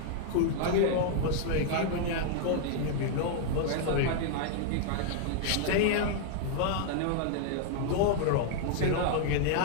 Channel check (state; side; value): different; both; correlation -0.01